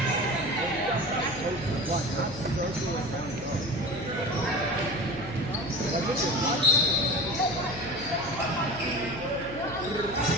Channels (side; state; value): left; noise; hum, 13 dB below the sound